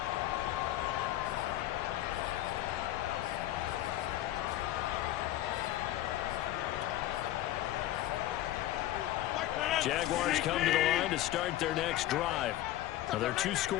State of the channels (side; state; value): right; quieter; 14.3 dB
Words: Jaguars come to the line to start their next drive. Now, there are 2